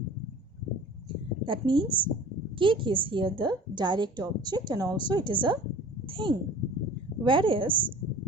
That means cake is here the direct object and also it is a thing. Whereas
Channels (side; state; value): both; normal; correlation 0.43